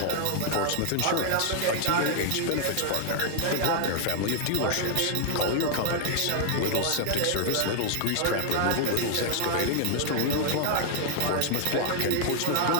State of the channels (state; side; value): different; both; correlation 0.00